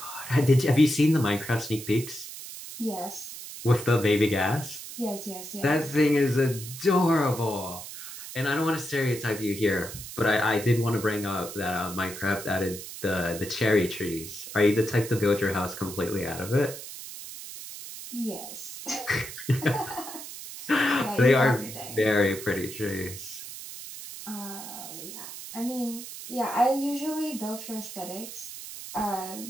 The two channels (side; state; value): right; noise; hiss, 11 dB below the sound